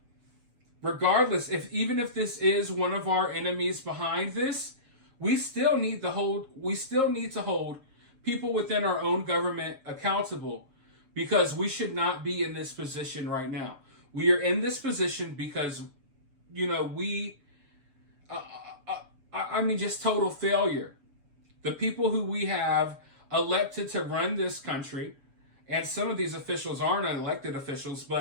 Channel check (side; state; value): left; late; 7.4 ms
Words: regardless, even if this is one of our enemies behind this, we still need to hold people within our own government accountable, because we should not be in this position right now. We are in this position because, just total failure. The people who we have elected to run this country, and some of these officials aren't elected officials,